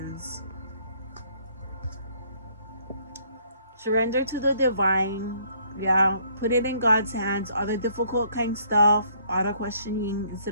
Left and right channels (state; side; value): inverted; both; correlation -0.64